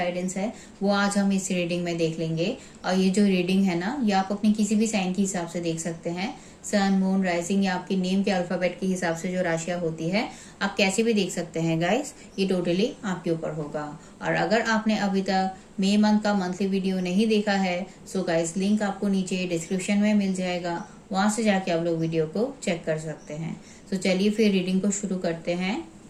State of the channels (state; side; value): identical; both; correlation 1.00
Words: है, वो आज हम इस रीडिंग में देख लेंगे। और ये जो रीडिंग है ना, ये आप अपनी किसी भी साइन के हिसाब से देख सकते हैं। सन, मून, राइजिंग या आपके नेम के अल्फाबेट के हिसाब से जो राशियां होती है, आप कैसे भी देख सकते हैं गाइस। ये टोटली आपके ऊपर होगा। और अगर आपने अभी तक मई मंथ का मंथली वीडियो नहीं देखा है, सो गाइस लिंक आपको नीचे डिस्क्रिप्शन में मिल जाएगा, वहां से जाके आप लोग वीडियो को चेक कर सकते हैं। तो चलिए फिर रीडिंग को शुरू करते हैं।